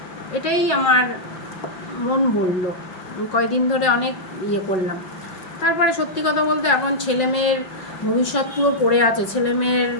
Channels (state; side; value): late; right; 5.5 ms